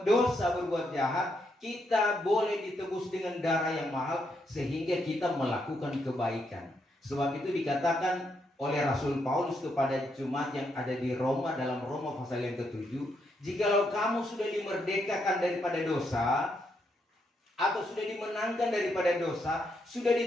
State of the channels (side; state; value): both; normal; correlation 0.78